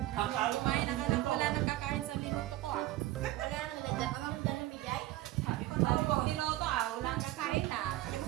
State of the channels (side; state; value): left; quieter; 16.1 dB